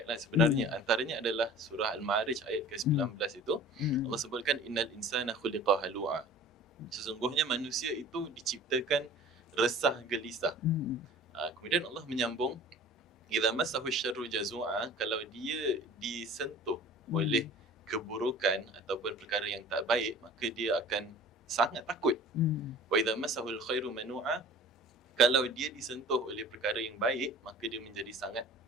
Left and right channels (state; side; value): normal; both; correlation 0.44